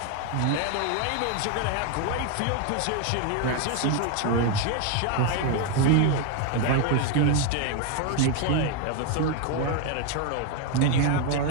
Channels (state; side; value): different; both; correlation 0.01